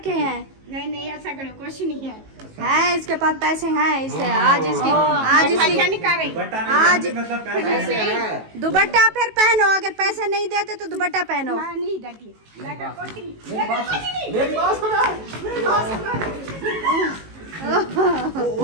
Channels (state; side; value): late; left; 19 ms